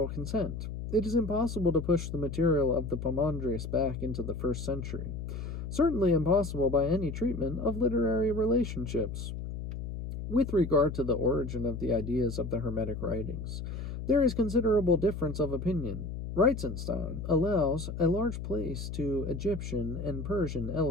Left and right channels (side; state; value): left; noise; hum, 6 dB below the sound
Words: consent. It is impossible to push the material of the Poimandres back into the 1st century. Certainly impossible by any treatment of literary relationships. With regard to the origin of the ideas of the Hermetic writings, there is considerable difference of opinion. Reitzenstein allows a large place to Egyptian and Persian